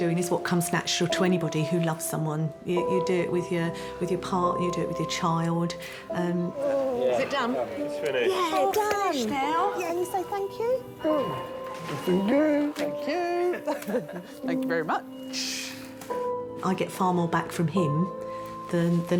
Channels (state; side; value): identical; both; correlation 1.00